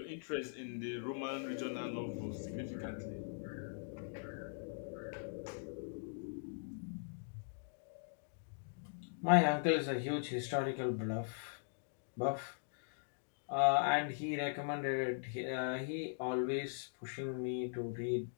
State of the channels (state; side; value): silent; right; digital silence